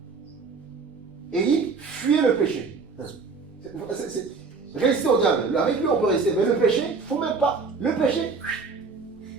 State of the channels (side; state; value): left; quieter; 4.6 dB